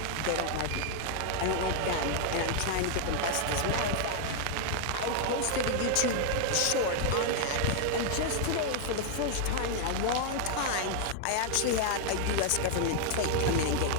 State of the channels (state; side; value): different; both; correlation 0.00